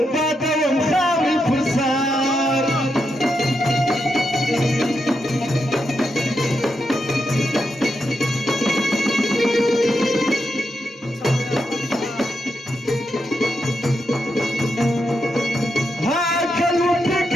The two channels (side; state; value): both; normal; correlation 0.84